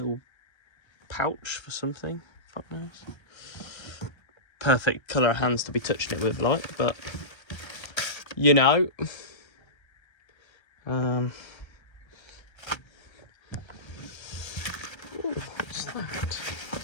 pouch for something. Fuck knows. Perfect colour of hands to be touching it with, like, but you know. Ooh, what's that?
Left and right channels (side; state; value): right; late; 1.3 ms